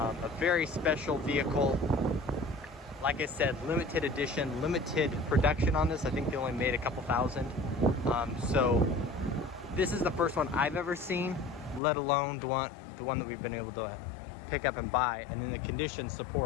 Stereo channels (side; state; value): right; drops out; at 11.8 s